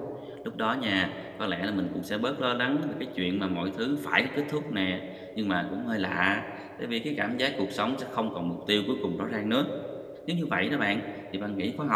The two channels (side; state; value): both; identical; correlation 1.00